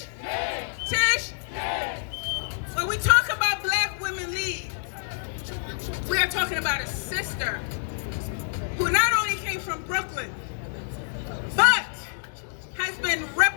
When we talk about Black Women Lead, we are talking about a sister who not only came from Brooklyn, but has been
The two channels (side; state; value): right; silent; 58 dB below the other